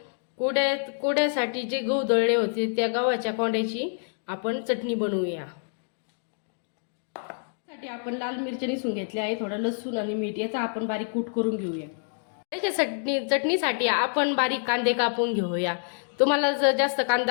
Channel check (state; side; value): silent; right; digital silence